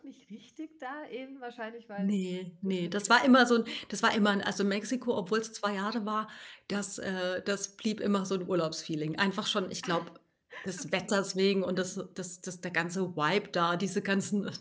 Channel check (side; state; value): both; identical; correlation 1.00